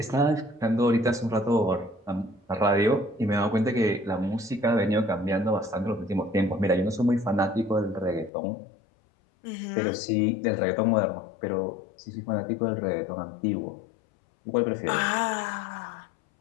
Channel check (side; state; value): right; drops out; at 8.3 s